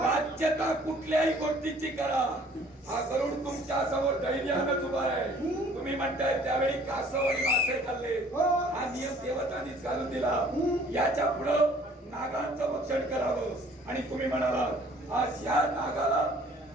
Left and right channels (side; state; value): both; normal; correlation 0.55